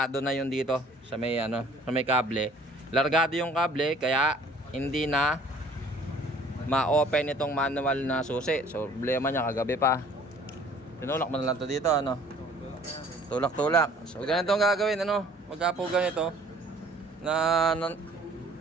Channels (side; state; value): both; normal; correlation 0.54